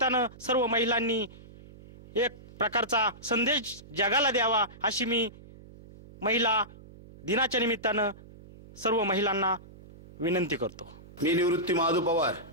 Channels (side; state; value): right; noise; hum, 20 dB below the sound